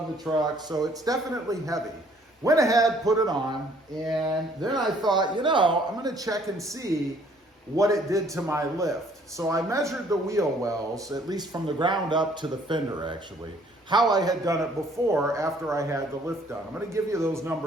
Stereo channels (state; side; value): normal; both; correlation 0.60